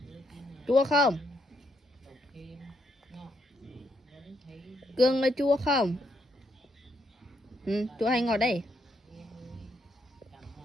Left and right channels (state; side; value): normal; both; correlation 0.76